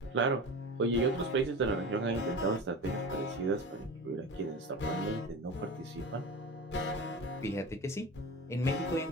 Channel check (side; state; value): both; normal; correlation 0.30